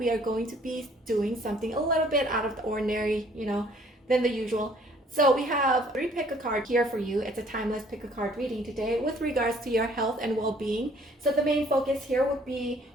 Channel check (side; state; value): both; normal; correlation 0.59